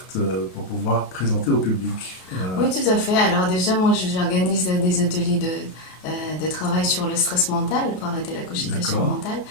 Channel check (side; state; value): right; late; 33 ms